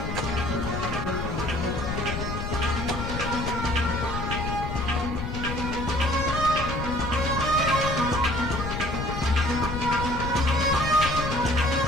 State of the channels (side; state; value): left; noise; rumble, 4 dB below the sound